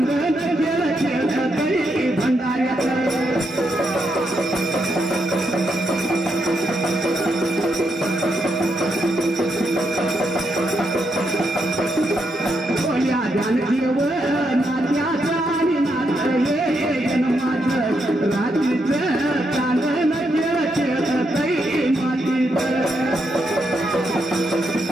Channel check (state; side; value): normal; both; correlation 0.80